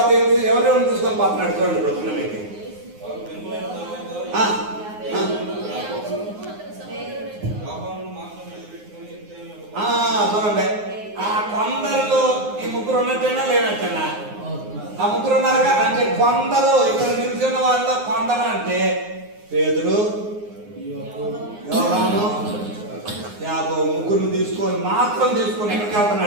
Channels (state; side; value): late; left; 9.6 ms